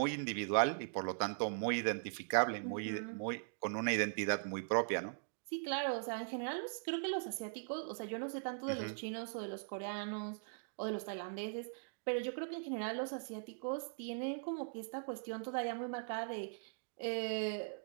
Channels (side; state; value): left; silent; digital silence